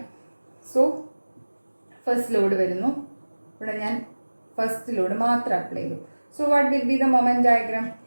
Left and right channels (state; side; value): inverted; both; correlation -1.00